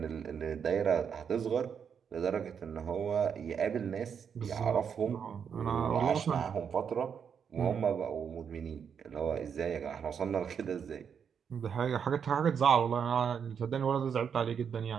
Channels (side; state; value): left; quieter; 7.2 dB